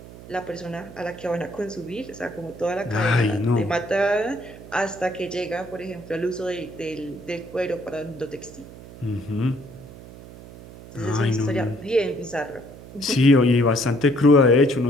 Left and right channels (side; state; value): right; noise; hum, 17 dB below the sound